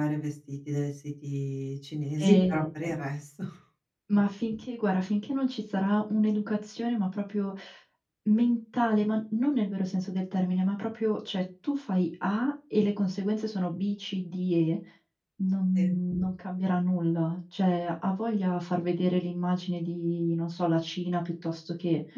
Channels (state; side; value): identical; both; correlation 1.00